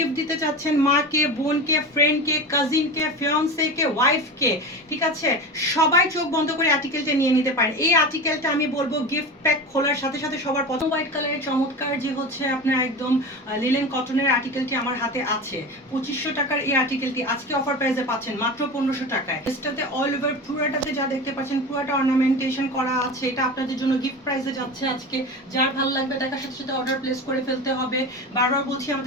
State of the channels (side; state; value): both; normal; correlation 0.28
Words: দিতে চাচ্ছেন, মাকে, বোনকে, ফ্রেন্ডকে, কাজিনকে, ফিয়ান্সেকে, ওয়াইফকে, ঠিক আছে, সবাই চোখ বন্ধ করে আর্টিকেলটা নিয়ে নিতে পারেন। এই আর্টিকেলটা আমি বলবো গিফট প্যাক খোলার সাথে সাথে সবার প্রথম হোয়াইট কালারের চমৎকার যে হচ্ছে আপনার একদম লিলেন কটনের আর্টিকেলটি আমার হাতে আছে। 2500 টাকার এই আর্টিকেলটি আজকে অফার প্রাইসে পাচ্ছেন মাত্র 1500 টাকায়। এটাতে অল ওভার পুরাটাতে যা দেখতে পাচ্ছেন পুরাটা অর্নামেন্টেশন করা আছে। এটা আপনাদের জন্য গিফট প্রাইসে যাচ্ছে আজকে। যার ভালো লাগবে দেখার সাথে সাথে অর্ডার প্লেস করে ফেলতে হবে। বারবার বলছি